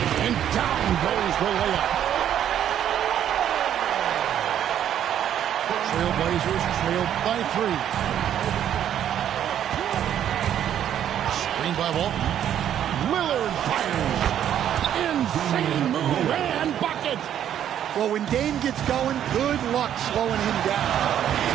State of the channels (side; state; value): left; quieter; 10.2 dB